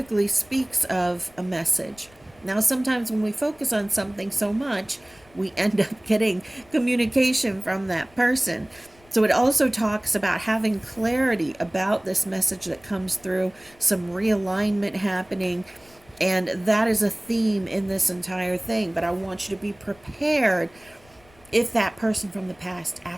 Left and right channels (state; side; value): noise; left; rumble, 28 dB below the sound